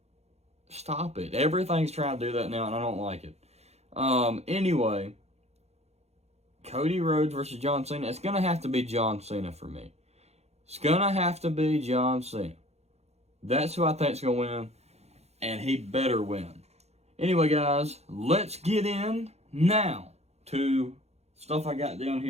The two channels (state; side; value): late; left; 0.31 ms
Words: Stop it. Everything's trying to do that now, and I don't like it. Anyway, Cody Rhodes versus John Cena. It's going to have to be John Cena for me. It's going to have to be John Cena. That's who I think is going to win, and he better win. Anyway, guys, let's get in now to stuff I got down